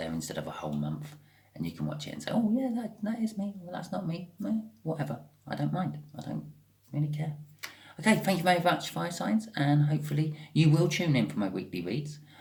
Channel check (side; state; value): both; identical; correlation 1.00